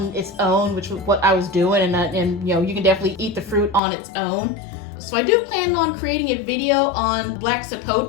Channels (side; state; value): right; drops out; at 3.8 s